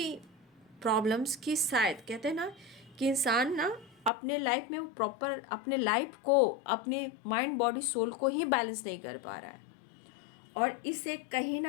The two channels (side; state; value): right; drops out; at 4.1 s